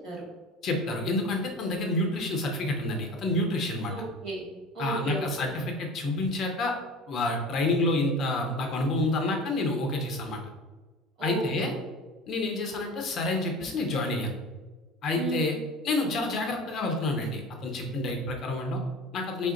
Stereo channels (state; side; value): normal; both; correlation 0.36